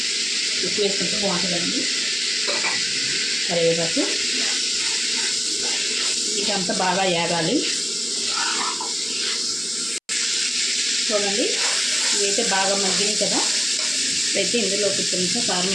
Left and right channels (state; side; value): identical; both; correlation 1.00